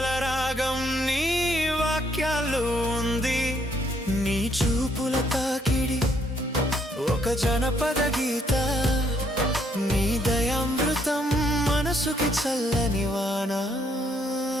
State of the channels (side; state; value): both; normal; correlation 0.70